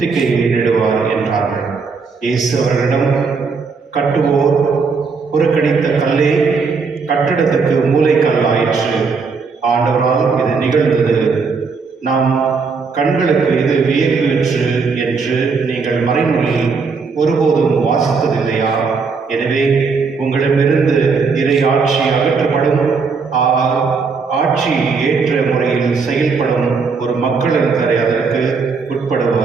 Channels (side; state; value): left; quieter; 4.9 dB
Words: என்றார்கள். இயேசு அவர்களிடம், கட்டுவோர் புறக்கணித்த கல்லே கட்டிடத்துக்கு மூலைக்கல் ஆயிற்று. ஆண்டவரால் இது நிகழ்ந்தது. நாம் கண்களுக்கு இது வியப்பு என்று நீங்கள் மறைநூலில் ஒருபோதும் வாசித்ததில்லையா? எனவே உங்களிடமிருந்து இறை ஆட்சி அகற்றப்படும், ஆட்சி ஏற்ற முறையில் செயல்படும் ஒரு மக்களினரை அதற்கு